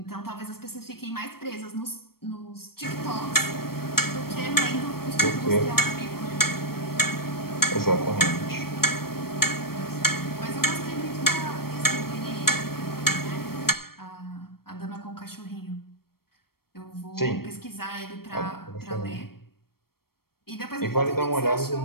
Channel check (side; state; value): right; late; 0.94 ms